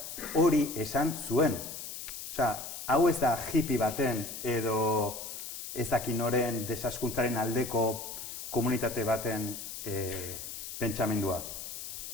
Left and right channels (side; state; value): left; noise; hiss, 8 dB below the sound